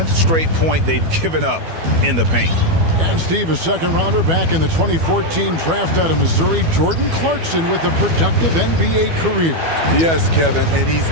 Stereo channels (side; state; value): left; late; 12 ms